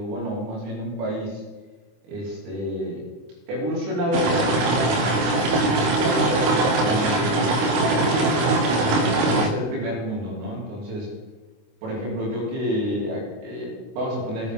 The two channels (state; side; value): late; left; 26 ms